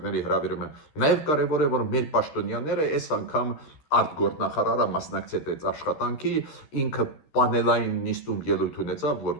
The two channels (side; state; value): right; late; 13 ms